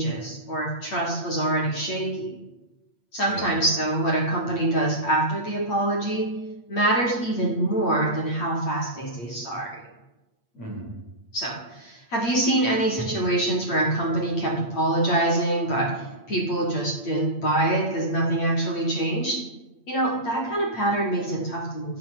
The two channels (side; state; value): right; late; 8.6 ms